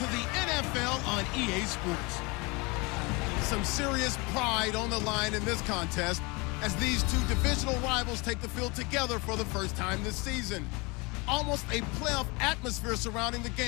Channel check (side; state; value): right; quieter; 27.2 dB